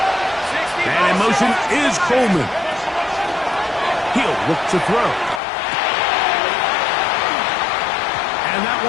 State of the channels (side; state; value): right; drops out; at 5.4 s